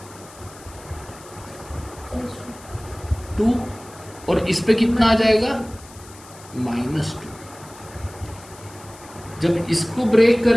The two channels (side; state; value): left; noise; hiss, 21 dB below the sound